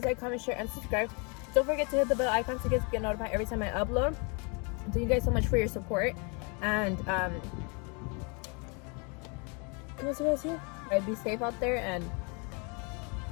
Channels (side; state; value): right; quieter; 33.5 dB